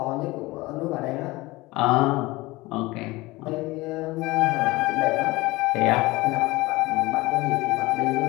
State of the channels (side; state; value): right; quieter; 21.0 dB